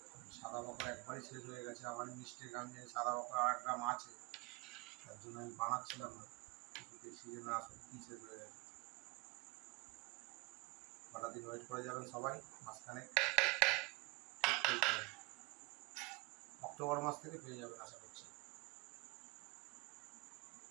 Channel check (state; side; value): quieter; left; 25.1 dB